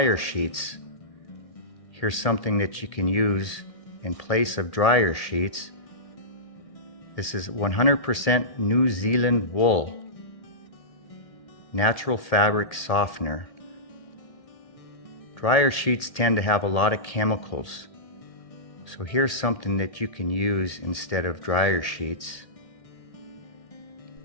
sheets. Here's something that you can use in place of dryer sheets. This is 100% New Zealand wool, natural fabric softener. Dryer sheets tend to have a lot of chemicals, so here's something that you can use instead of dryer sheets.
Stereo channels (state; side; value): late; right; 1.8 ms